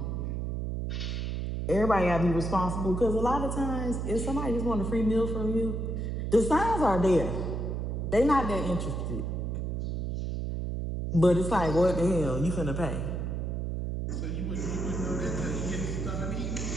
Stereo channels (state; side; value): noise; right; hum, 2 dB below the sound